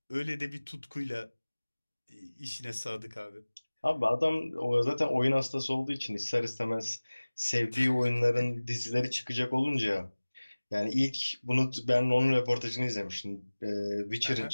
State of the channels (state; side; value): inverted; both; correlation -1.00